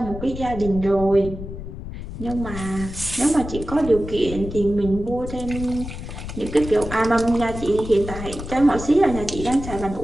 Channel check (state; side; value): noise; left; rumble, 9 dB below the sound